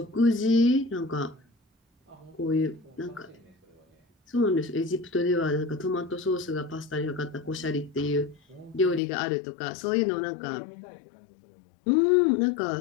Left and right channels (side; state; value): right; drops out; at 9.0 s